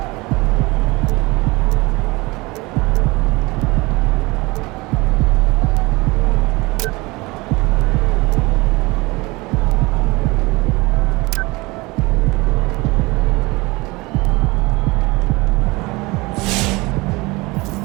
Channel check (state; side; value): quieter; left; 23.3 dB